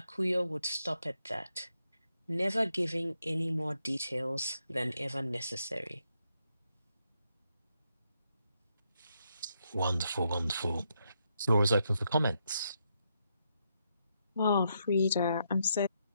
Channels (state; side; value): inverted; both; correlation -0.79